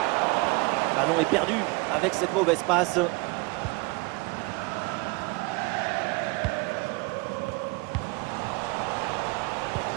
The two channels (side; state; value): left; quieter; 27.0 dB